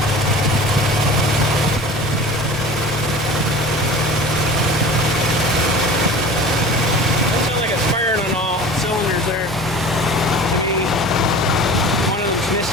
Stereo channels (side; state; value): both; normal; correlation 0.39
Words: That sounds like it's firing on all cylinders there. Maybe one of them's